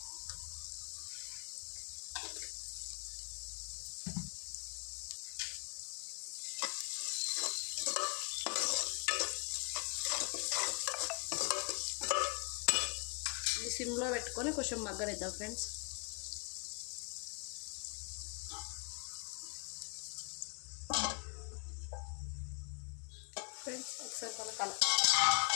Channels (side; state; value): right; quieter; 37.6 dB